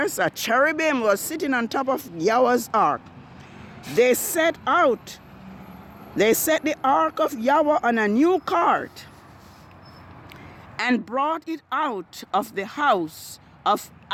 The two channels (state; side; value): identical; both; correlation 1.00